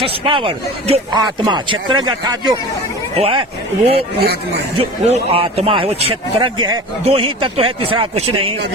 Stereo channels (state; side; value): normal; both; correlation 0.36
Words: power, जो आत्मा, क्षेत्रज्ञ अर्थात जो वो है वो आत्मा है, वो क्षेत्रज्ञ है। दो ही तत्व है, तीसरा कुछ नहीं।